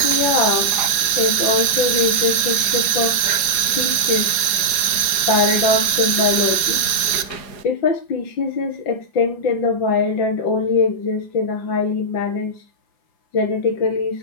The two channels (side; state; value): right; late; 4.9 ms